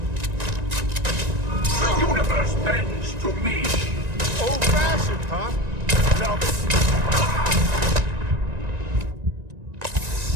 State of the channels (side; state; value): left; late; 1.9 ms